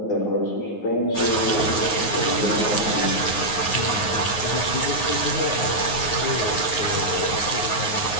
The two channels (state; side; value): late; right; 9.5 ms